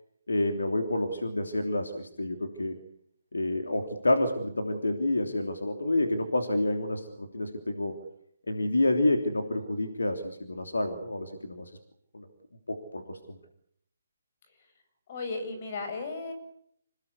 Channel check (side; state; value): both; inverted; correlation -0.91